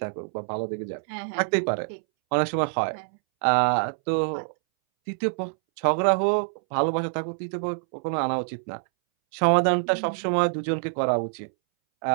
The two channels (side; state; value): left; silent; 61 dB below the other